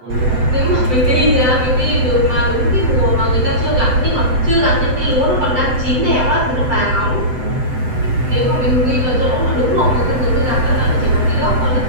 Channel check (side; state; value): left; late; 7.9 ms